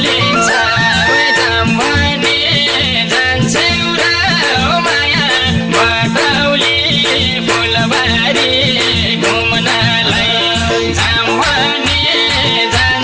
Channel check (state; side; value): identical; both; correlation 1.00